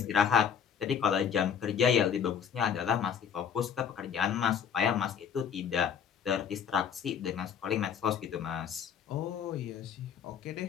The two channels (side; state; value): right; quieter; 7.8 dB